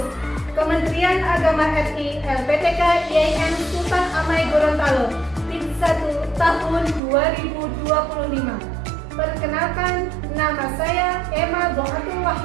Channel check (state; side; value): drops out; left; at 7.0 s